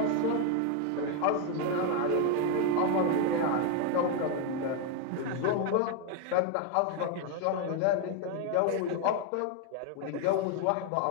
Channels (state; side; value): different; both; correlation 0.01